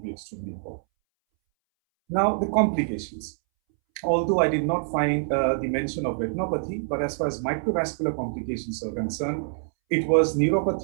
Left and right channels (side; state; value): left; silent; 61 dB below the other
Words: extremely important. Now, the complications. Although I did not find the mention of retinopathy, but as far as microvascular complications are concerned, it was